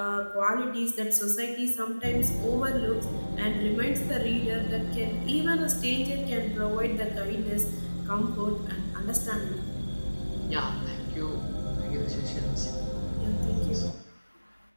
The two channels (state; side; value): inverted; both; correlation -1.00